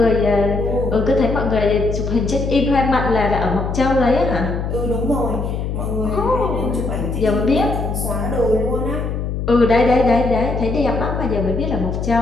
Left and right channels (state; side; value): noise; left; hum, 3 dB below the sound